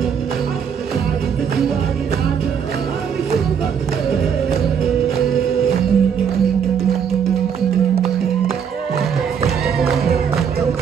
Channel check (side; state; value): left; quieter; 7.5 dB